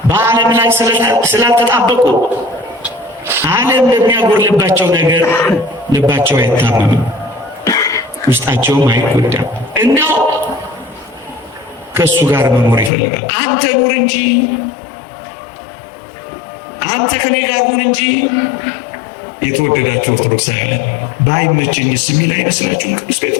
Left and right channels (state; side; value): drops out; right; at 12.9 s